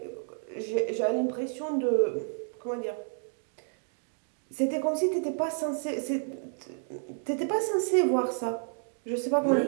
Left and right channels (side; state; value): left; silent; digital silence